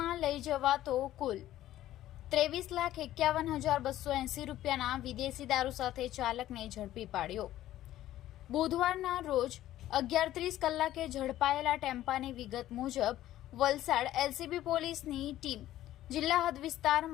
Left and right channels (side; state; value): right; quieter; 13.7 dB